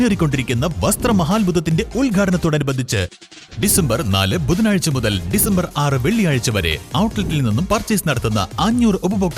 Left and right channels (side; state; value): both; identical; correlation 1.00